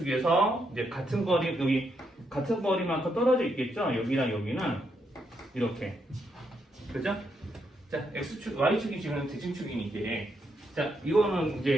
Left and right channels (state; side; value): normal; both; correlation 0.79